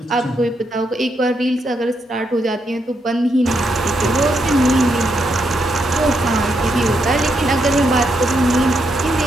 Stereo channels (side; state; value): both; normal; correlation 0.80